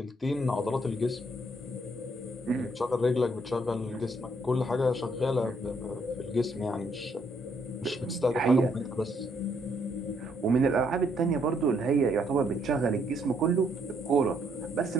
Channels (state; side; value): normal; both; correlation 0.71